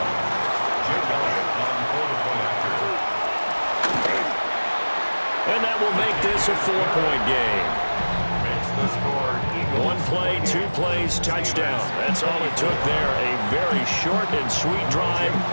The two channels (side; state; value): both; inverted; correlation -1.00